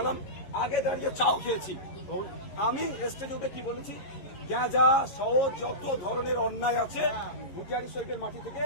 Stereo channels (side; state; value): right; late; 11 ms